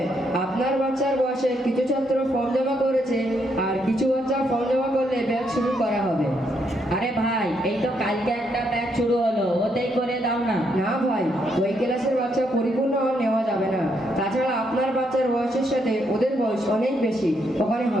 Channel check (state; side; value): normal; both; correlation 0.76